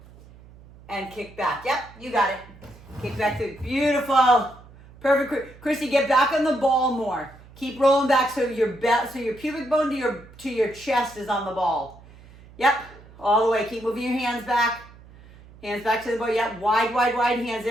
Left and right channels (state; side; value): noise; right; hum, 22 dB below the sound